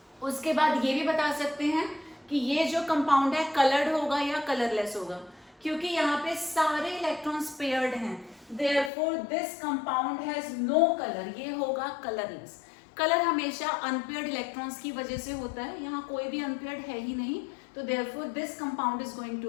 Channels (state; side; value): drops out; right; at 8.9 s